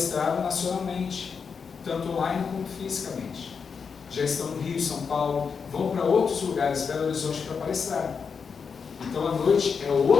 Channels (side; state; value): right; quieter; 5.9 dB